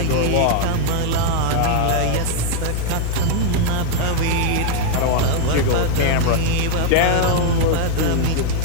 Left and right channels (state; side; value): different; both; correlation 0.00